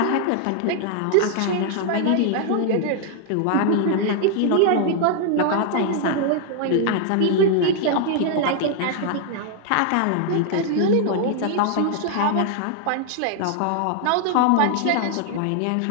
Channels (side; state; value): both; different; correlation 0.00